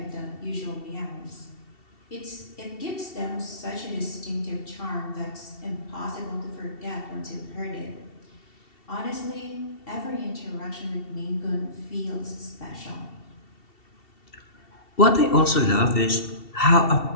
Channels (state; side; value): late; right; 2.7 ms